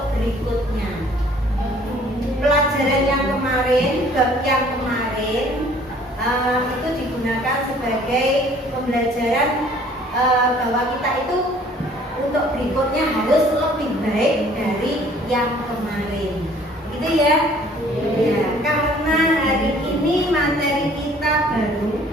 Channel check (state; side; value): normal; both; correlation 0.55